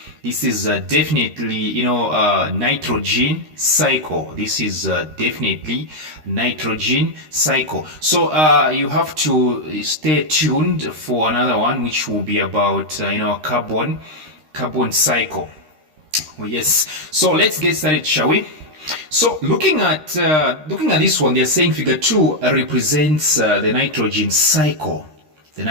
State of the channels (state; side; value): late; left; 13 ms